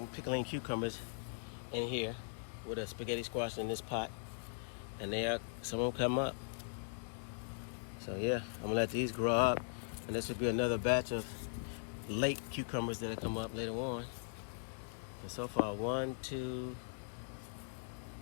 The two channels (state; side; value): silent; right; digital silence